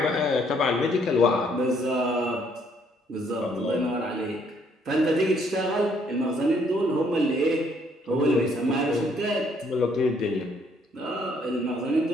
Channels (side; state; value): both; normal; correlation 0.67